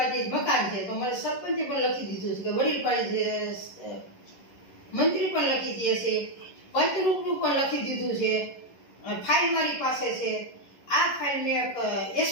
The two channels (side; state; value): right; late; 11 ms